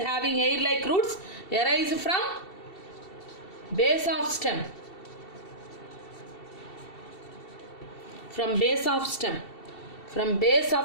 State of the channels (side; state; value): right; late; 2.7 ms